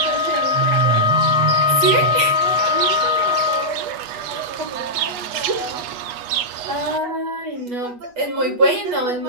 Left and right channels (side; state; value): left; late; 8.2 ms